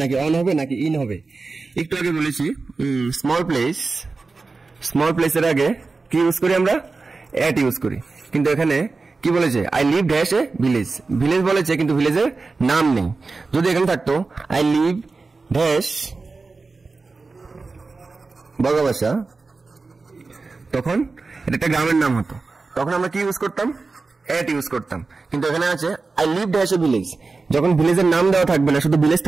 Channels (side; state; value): left; quieter; 4.0 dB